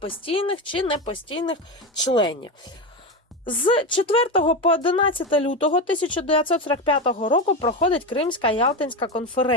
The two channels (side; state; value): both; normal; correlation 0.17